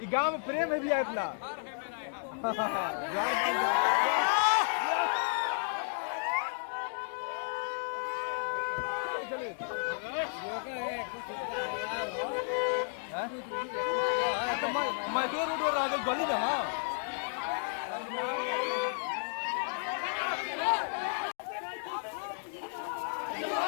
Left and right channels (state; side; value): silent; right; digital silence